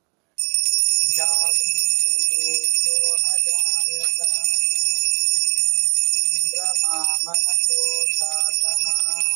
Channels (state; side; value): quieter; left; 32.3 dB